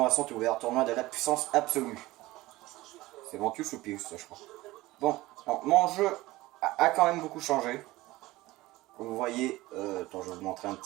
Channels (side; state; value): left; quieter; 18.8 dB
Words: sont ouvertes. Tournoi de la puissance absolue. C'est Ventus ou Pius, ça je crois. Bon, donc, mon jeu a quand même beaucoup changé. Comme vous voyez, attends, je vais vous montrer un